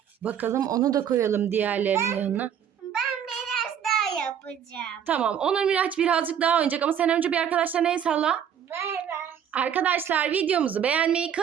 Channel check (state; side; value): quieter; left; 8.7 dB